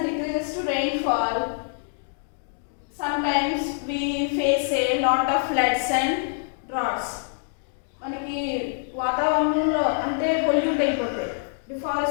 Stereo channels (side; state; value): right; silent; digital silence